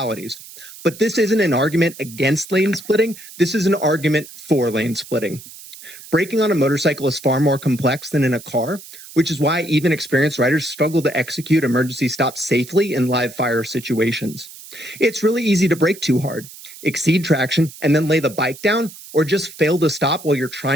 But this isn't an argument against lane splitting. This is an argument for lane splitting. Braking on a motorcycle is far more complex than in a car, which is why even experienced riders struggle to execute emergency stops safely in live fire situations. It's really easy to brake too hard, exceed traction, and then lay the bike down, or just fail to stop while you're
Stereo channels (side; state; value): right; noise; hiss, 17 dB below the sound